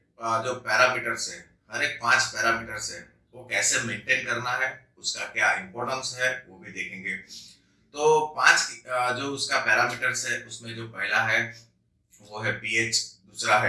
जो पैरामीटर्स है, हर एक 5 पैरामीटर्स है, वो कैसे मेंटेन करना है, उसका क्या इंपॉर्टेंस है, वो भी देखेंगे। तो 5 जो उसका पैरामीटर्स है उसमें जो पहला है वो है पीएच, दूसरा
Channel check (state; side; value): identical; both; correlation 1.00